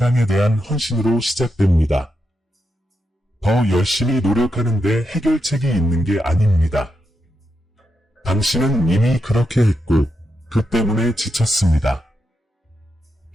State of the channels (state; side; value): normal; both; correlation 0.85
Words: 대한 헌신으로 시작됩니다. 더 열심히 노력하는데 해결책이 있는 게 아닙니다. 당신은 이미 그렇게 했고 그 때문에 지쳤습니다.